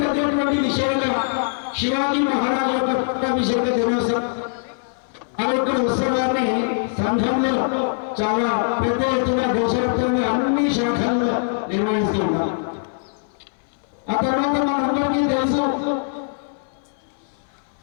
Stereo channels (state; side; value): silent; right; 64 dB below the other